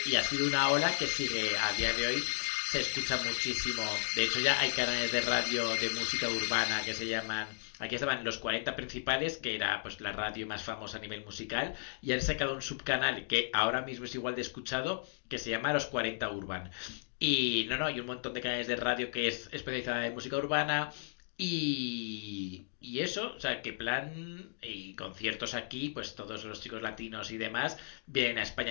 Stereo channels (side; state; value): right; silent; digital silence